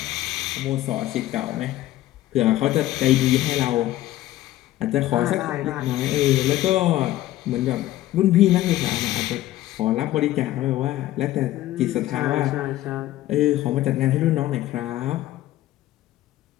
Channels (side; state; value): right; quieter; 14.9 dB